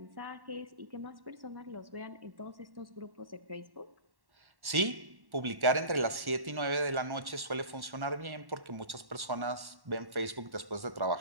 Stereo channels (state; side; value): late; left; 1.1 ms